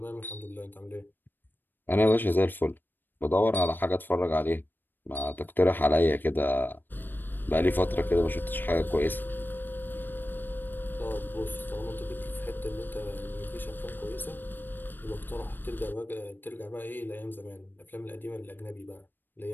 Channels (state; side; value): late; right; 0.093 ms